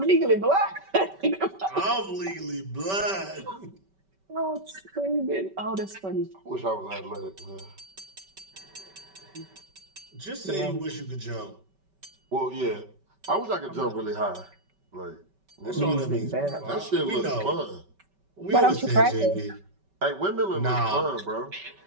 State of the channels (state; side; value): late; left; 5.2 ms